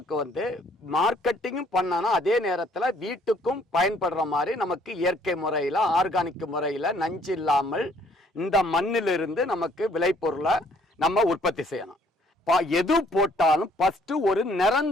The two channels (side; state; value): both; normal; correlation 0.63